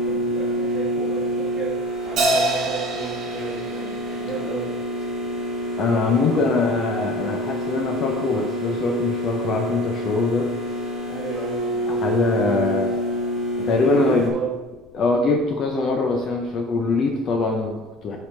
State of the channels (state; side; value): noise; left; rumble, 29 dB below the sound